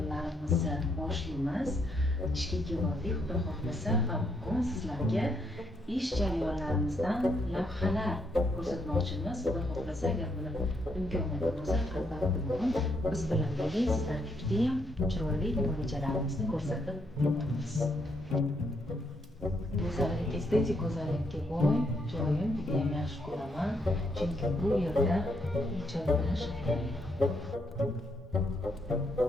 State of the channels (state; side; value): normal; both; correlation 0.75